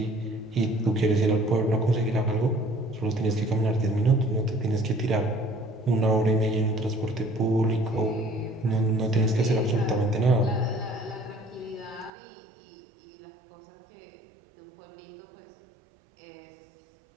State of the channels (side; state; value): left; drops out; at 12.1 s